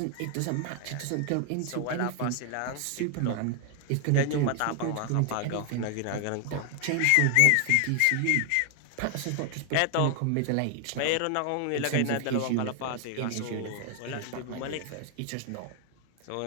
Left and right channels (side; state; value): both; different; correlation 0.00